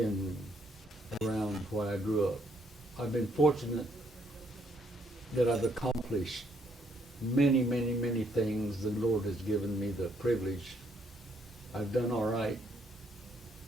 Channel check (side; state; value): both; normal; correlation 0.71